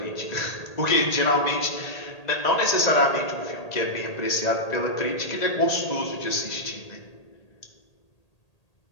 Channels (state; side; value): late; right; 1.8 ms